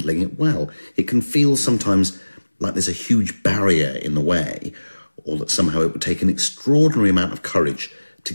it well. It can feel sometimes like there's a huge barrier in the way, or that somehow it would take an extraordinary amount of courage to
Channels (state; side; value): inverted; both; correlation -1.00